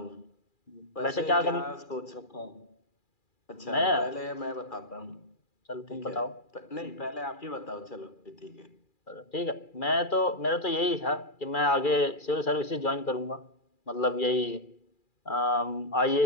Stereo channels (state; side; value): late; right; 2.4 ms